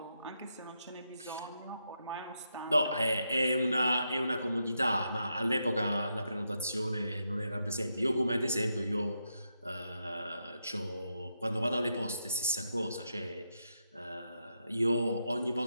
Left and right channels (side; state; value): both; inverted; correlation -0.83